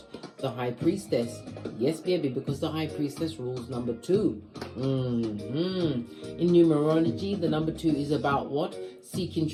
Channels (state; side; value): identical; both; correlation 1.00